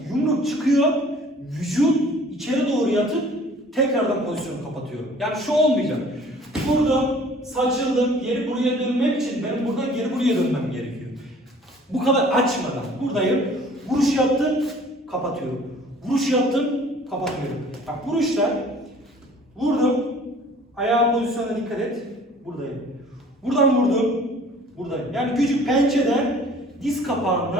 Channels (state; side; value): normal; both; correlation 0.51